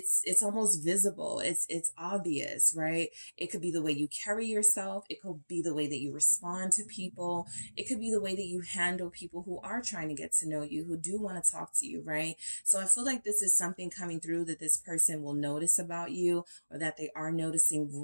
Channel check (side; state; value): both; inverted; correlation -1.00